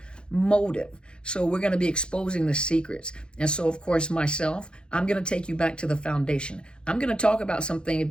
motive. So we're going to be exposing the secrets. And so, of course, myself, I'm going to take you back to the foundation. I'm going to talk about something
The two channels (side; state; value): right; late; 0.051 ms